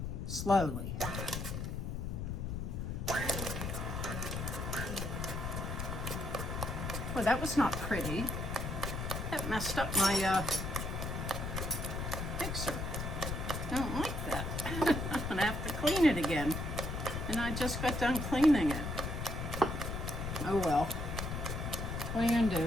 slowly. Well, that was not pretty. That messed up my mixer. I don't like that. I'm gonna have to clean it again. And I just got done cleaning it. Oh well. What are you gonna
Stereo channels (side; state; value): left; noise; rumble, 3 dB below the sound